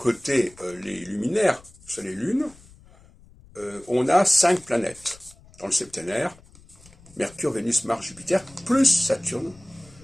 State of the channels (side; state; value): left; noise; rumble, 25 dB below the sound